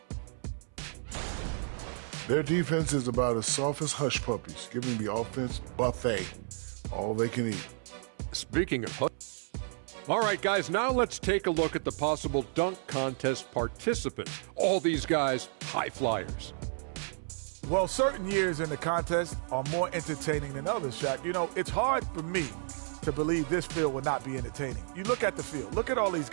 Their defense is about as soft as hush puppies, giving the offense buffet, all they can eat. Speaking of hush. All right, guys, now let's take a look at the possible dunk contest participants. All these guys, high flyers. Well, certain years in the contest are more entertaining than others, Shaq. You know, it's hard for me to believe this field will not be entertaining. You look at the field. Look at all these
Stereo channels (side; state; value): left; silent; 57 dB below the other